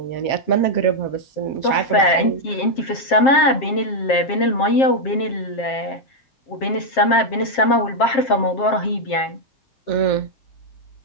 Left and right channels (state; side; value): late; right; 7.5 ms